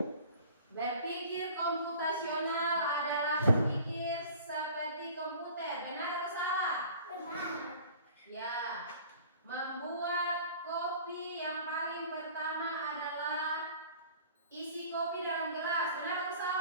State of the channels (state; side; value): inverted; both; correlation -0.47